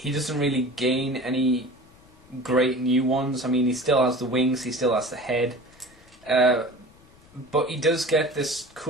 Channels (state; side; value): noise; left; rumble, 27 dB below the sound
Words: doesn't really gain any great new ones. I mean, he still has the wings, he still has the head, but he does get this